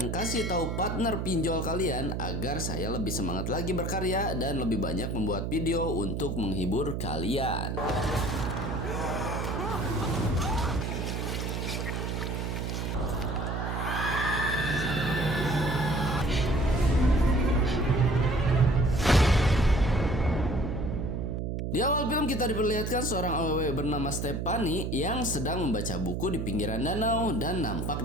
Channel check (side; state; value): right; noise; hum, 2 dB below the sound